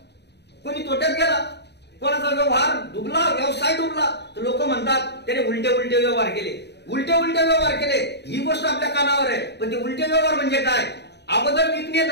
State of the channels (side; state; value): right; late; 0.49 ms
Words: कोणी तोट्यात गेला, कोणाचा व्यवहार डुबला, व्यवसाय डुबला, तर लोक म्हणतात त्याने उलटे व्यवहार केले, उलटे व्यवहार केले. ही गोष्ट आपल्या कानावर आहे, पण ते उलटे व्यवहार म्हणजे काय? अगोदर विकणे